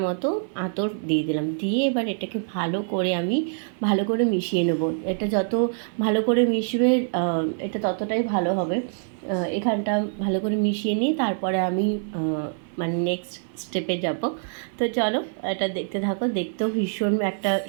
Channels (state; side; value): silent; left; 59 dB below the other